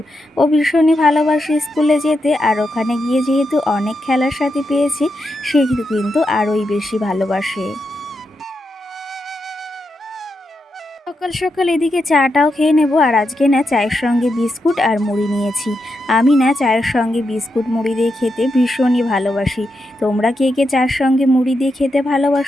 ও ভীষণই ভালোবাসে স্কুলে যেতে, আর ওখানে গিয়ে যেহেতু অনেক খেলার সাথে পেয়েছি, সে কিন্তু আরোই বেশি ভালোবাসে। সকাল সকাল এদিকে চাটাও খেয়ে নেব। আর আজকে না চায়ের সঙ্গে বিস্কুট আর মুড়ি নিয়েছি। আমি না চায়ের সঙ্গে বিস্কুট মুড়ি দিয়ে খেতে ভীষণই ভালোবাসি। তোমরা কে কে চায়ের সঙ্গে মুড়ি দিয়ে খেতে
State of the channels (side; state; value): both; normal; correlation 0.85